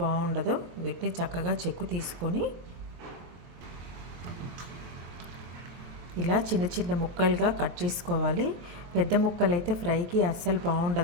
వీటిని చక్కగా చెక్కు తీసుకొని ఇలా చిన్న చిన్న ముక్కలుగా కట్ చేసుకోవాలి. పెద్ద ముక్కలు అయితే ఫ్రైకి అస్సలు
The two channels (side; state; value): left; late; 23 ms